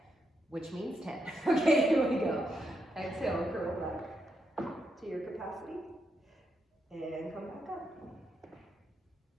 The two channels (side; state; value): both; normal; correlation 0.81